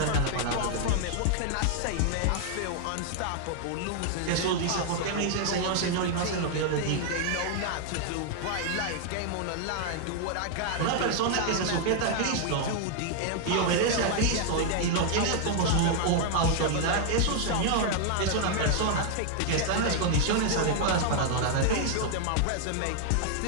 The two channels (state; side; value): different; both; correlation 0.00